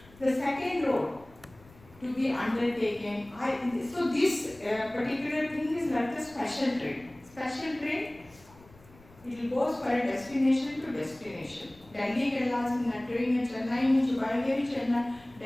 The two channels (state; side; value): noise; left; rumble, 25 dB below the sound